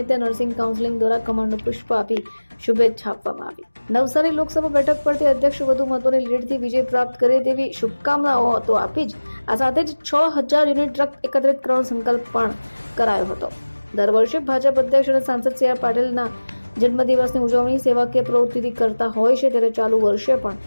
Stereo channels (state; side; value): inverted; both; correlation -1.00